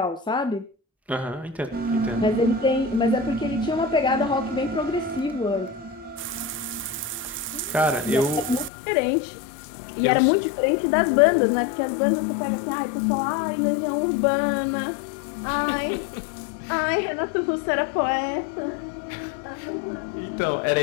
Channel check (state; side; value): drops out; right; at 8.7 s